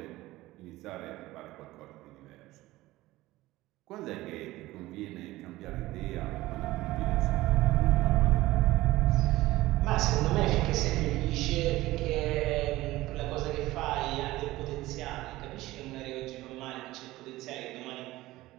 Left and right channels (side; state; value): left; quieter; 17.8 dB